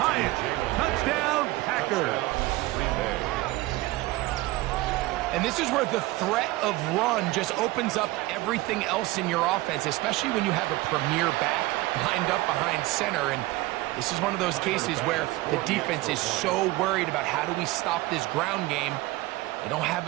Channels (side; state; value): left; quieter; 19.6 dB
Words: Touchdown, Packers. And this is where the threat of run just opens up everything else in your offense, especially when you have a premier back lined up behind center. And this is one of those cases where the defense is so worried about how do we stop this ground game. They don't have